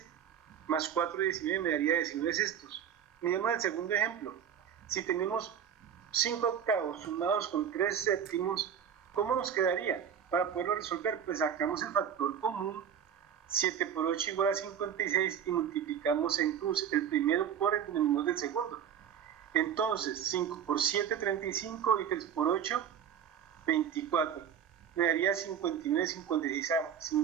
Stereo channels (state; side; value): quieter; left; 8.5 dB